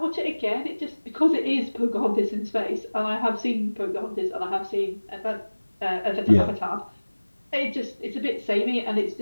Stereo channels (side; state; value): both; inverted; correlation -1.00